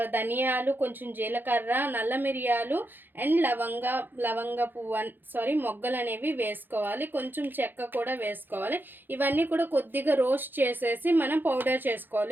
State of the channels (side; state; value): left; late; 0.094 ms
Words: ధనియాలు, కొంచెం జీలకర్ర, నల్ల మిరియాలు అండ్ లవంగ పువ్వు మొగ్గలు అనేవి వేసుకోవాలి. కొంచెం చెక్క కూడా వేసుకోవాలి. ఇవన్నీ కూడా కొద్దిగా రోస్ట్ చేసేసి మనం పౌడర్